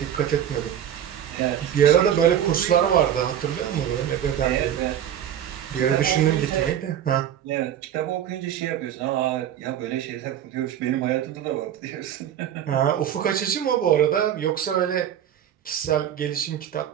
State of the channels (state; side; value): quieter; left; 10.3 dB